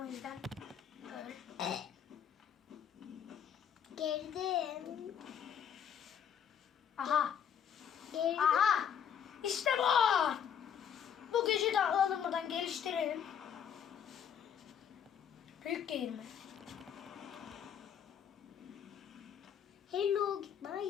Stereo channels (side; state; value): right; quieter; 8.4 dB